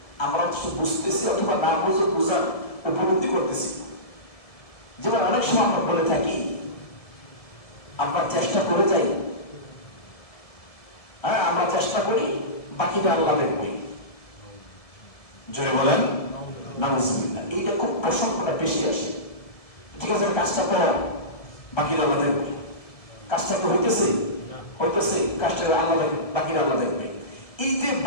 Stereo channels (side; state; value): right; late; 1.7 ms